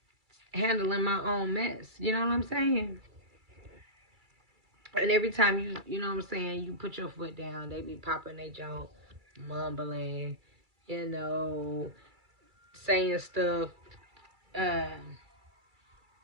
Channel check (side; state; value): left; late; 2.3 ms